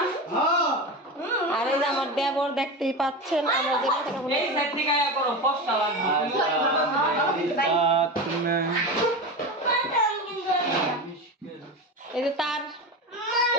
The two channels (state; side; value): normal; both; correlation 0.24